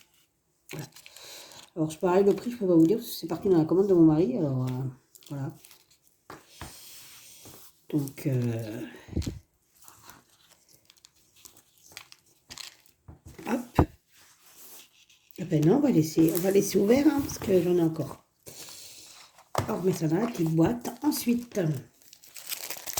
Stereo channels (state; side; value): identical; both; correlation 1.00